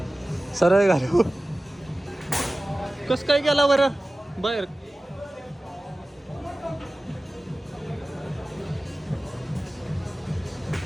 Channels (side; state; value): both; normal; correlation 0.97